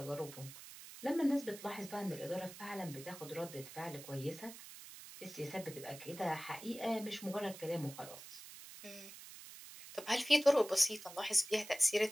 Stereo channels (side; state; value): right; noise; hiss, 14 dB below the sound